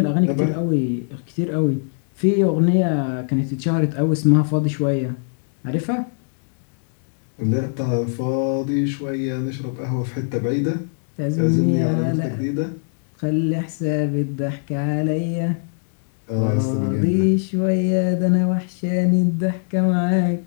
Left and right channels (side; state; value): right; silent; digital silence